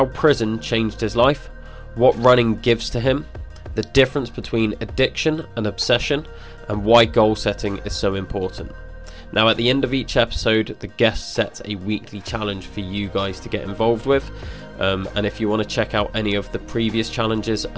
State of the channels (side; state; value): both; identical; correlation 1.00